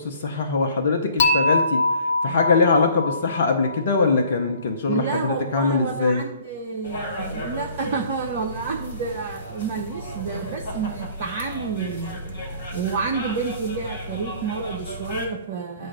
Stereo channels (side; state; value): both; inverted; correlation -0.55